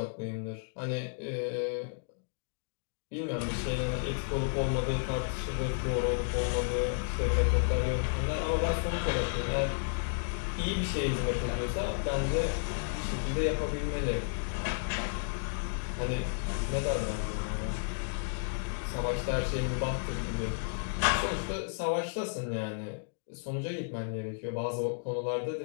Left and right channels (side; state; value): right; silent; digital silence